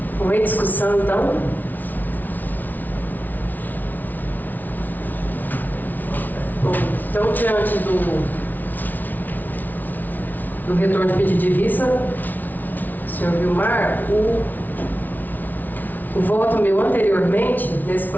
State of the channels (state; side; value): late; right; 0.082 ms